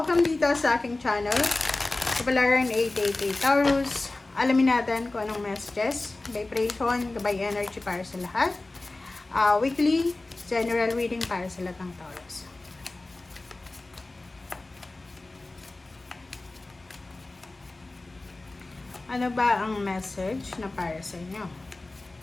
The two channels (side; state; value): right; quieter; 3.0 dB